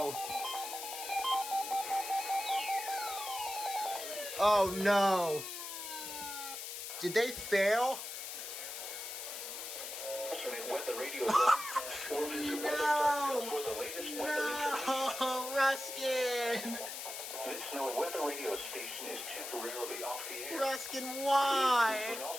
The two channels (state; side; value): noise; left; hiss, 7 dB below the sound